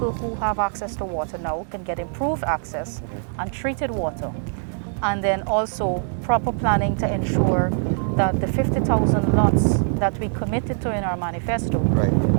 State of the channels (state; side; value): silent; left; 63 dB below the other